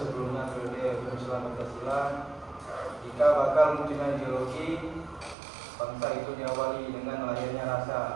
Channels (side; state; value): left; drops out; at 5.4 s